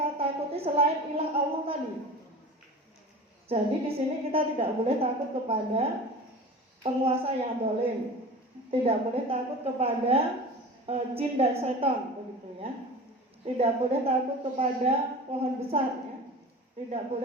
takuti selain ilah Allah tadi. Jadi di sini kita tidak boleh takut kepada penguasa yang dolim, tidak boleh takut kepada jin dan setan begitu ya. Tidak boleh takut kepada pohon besar ya. Tidak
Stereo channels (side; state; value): both; normal; correlation 0.35